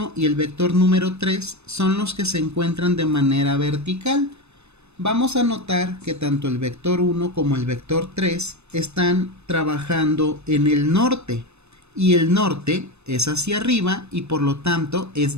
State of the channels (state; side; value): late; left; 0.81 ms